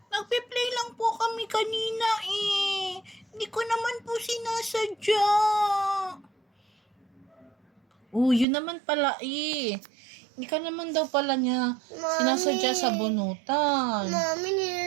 Nagpe-play lang po kami kanina eh. Hindi ko naman po sinasadya. Oh, yun naman pala eh. Hindi ka naman daw pala niya sinasadya sa bunutan. Mami,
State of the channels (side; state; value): left; drops out; at 8.5 s